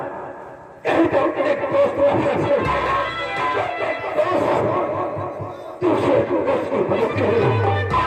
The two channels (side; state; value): both; identical; correlation 1.00